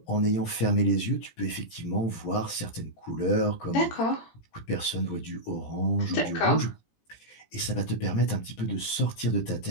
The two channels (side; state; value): right; late; 18 ms